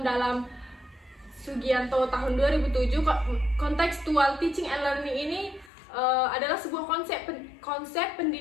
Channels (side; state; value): right; drops out; at 5.7 s